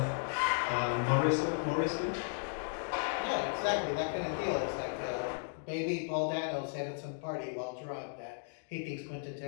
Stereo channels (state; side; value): silent; right; digital silence